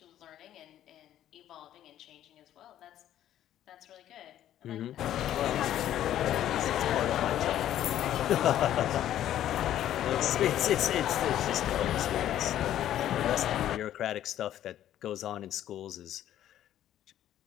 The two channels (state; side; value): quieter; right; 11.8 dB